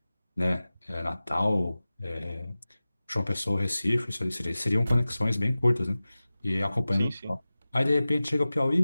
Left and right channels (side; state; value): both; inverted; correlation -0.97